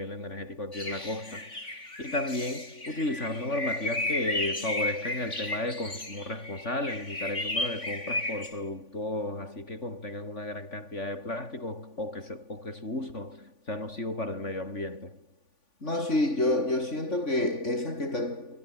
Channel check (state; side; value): late; right; 3.5 ms